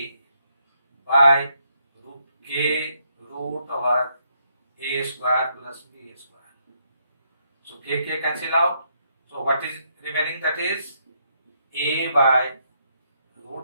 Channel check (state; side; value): inverted; both; correlation -0.75